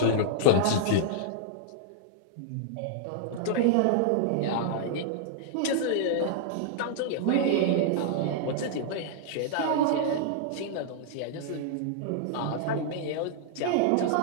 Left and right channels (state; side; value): different; both; correlation -0.01